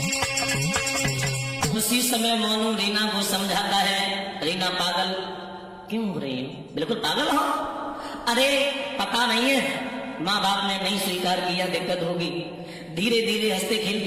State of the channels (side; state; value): both; identical; correlation 1.00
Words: उसी समय मोनू रीना को समझाता है, रीना पागल क्यों हो रही हो, बिल्कुल पागल हो, अरे पता नहीं है माँ बाप ने नहीं स्वीकार किया, दिक्कत होगी। धीरे धीरे हंसते